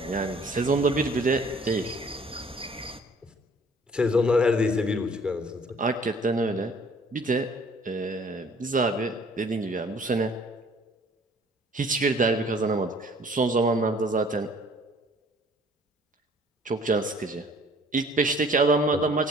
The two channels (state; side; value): normal; both; correlation 0.55